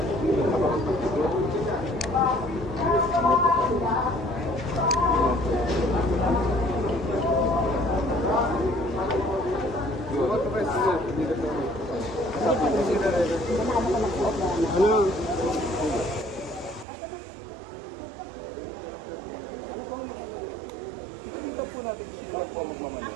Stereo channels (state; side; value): drops out; left; at 16.9 s